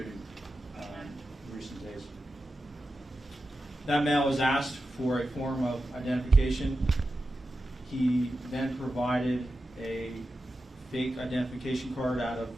in recent days. That male was asked for a form of identification. He then provided a fake identification card out of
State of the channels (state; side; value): normal; both; correlation 0.91